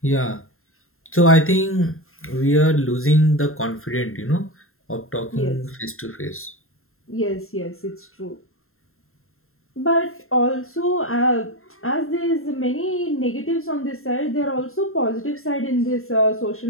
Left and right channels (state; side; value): late; right; 0.61 ms